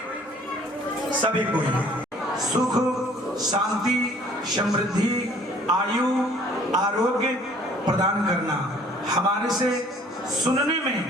सुख शांति समृद्धि आयु आरोग्य प्रदान करना, हमारे से सुनने में,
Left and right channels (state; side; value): normal; both; correlation 0.55